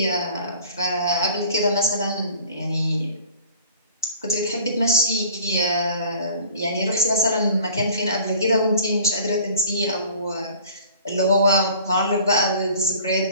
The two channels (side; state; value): both; inverted; correlation -0.47